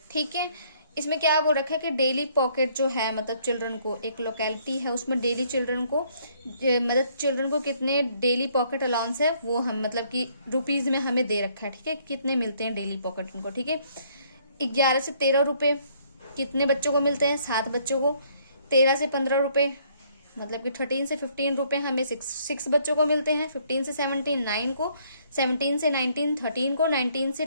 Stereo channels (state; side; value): inverted; both; correlation -0.65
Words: ठीक है। इसमें क्या बोल रखा है कि डेली पॉकेट जो है मतलब चिल्ड्रन को, एक लोकेलिटी है उसमें डेली चिल्ड्रन को मतलब चिल्ड्रन को कितने डेली पॉकेट अलाउंस है वो हम मतलब कि रुपीज में हमें दे रखा है। ठीक है, कितने मिलते हैं डेली पॉकेट उनको। ठीक है, 11 से 13 रुपए कितने बच्चों को मिलते हैं? 7 बच्चों को। 13 से 15 रुपए मतलब कि 13 से 15 रुपए हमें 6 बच्चों को मिलते हैं। 15 से 17 9 को, 17 से 19 13 को, 19